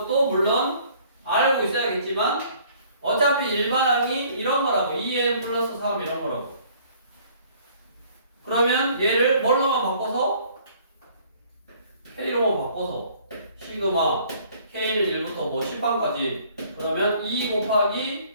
물론 알고 있어야겠지만 어차피 일반항이 이런 거라고 2n 플러스 3 이런 거라고. 그러면 얘를 뭘로만 바꿔서 K로만 바꿔서 시그마 K는 1부터 뭐 10항까지 그러면 2 곱하기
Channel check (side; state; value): both; inverted; correlation -0.57